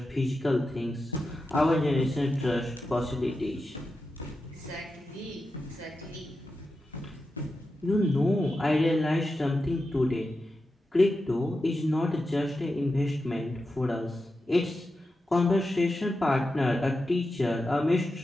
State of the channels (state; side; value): normal; both; correlation 0.90